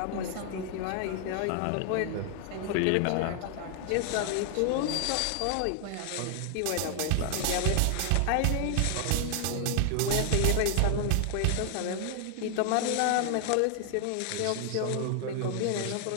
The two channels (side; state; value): both; different; correlation 0.00